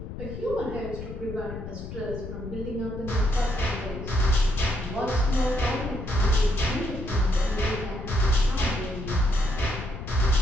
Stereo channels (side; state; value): left; noise; rumble, 9 dB below the sound